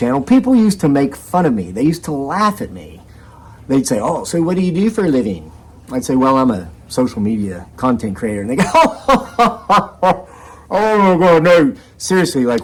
people used to make fun of me. They used to laugh at me. They'd say, oh, so what do you do for a living? I'd say, well, I'm a social media content creator. And they go, oh my God, no. Seriously,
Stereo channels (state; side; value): identical; both; correlation 1.00